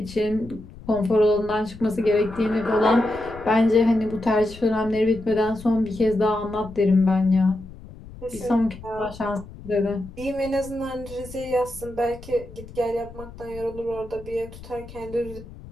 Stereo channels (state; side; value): noise; left; rumble, 16 dB below the sound